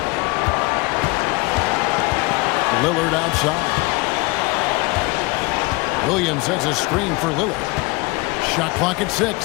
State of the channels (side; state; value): right; quieter; 24.7 dB